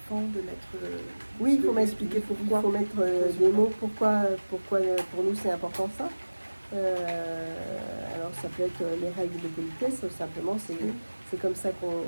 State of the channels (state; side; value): inverted; both; correlation -1.00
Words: de mettre... Oui, il faut m'expliquer pourquoi. Il faut mettre des mots, pourquoi pour nous c'est important ça. Alors ça peut être les règles de politesse, simplement c'est comme ça